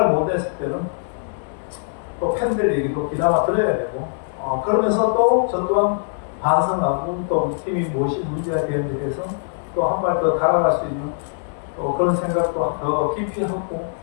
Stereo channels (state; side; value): silent; right; digital silence